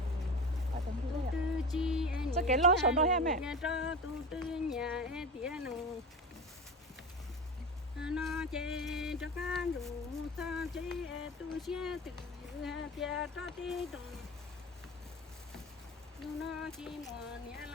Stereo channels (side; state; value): both; normal; correlation 0.28